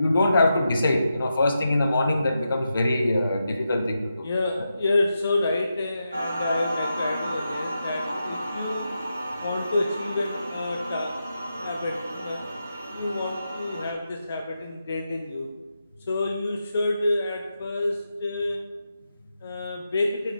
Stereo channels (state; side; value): inverted; both; correlation -0.87